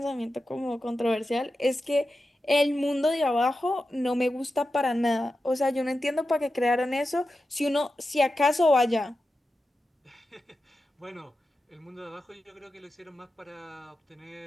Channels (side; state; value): both; normal; correlation 0.91